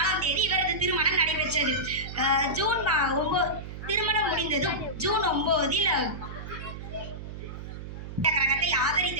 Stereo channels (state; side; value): noise; right; hum, 10 dB below the sound